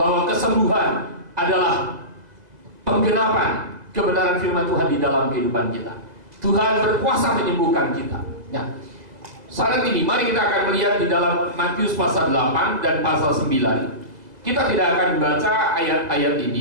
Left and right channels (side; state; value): left; late; 2.0 ms